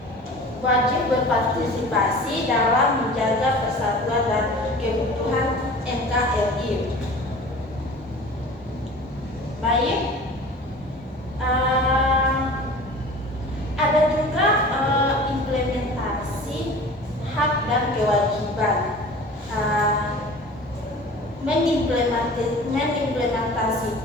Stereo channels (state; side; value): normal; both; correlation 0.41